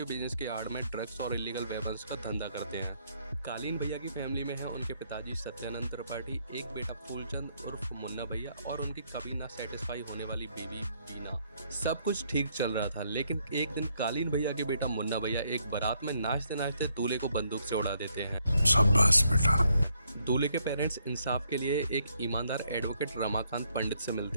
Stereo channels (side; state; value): both; inverted; correlation -0.73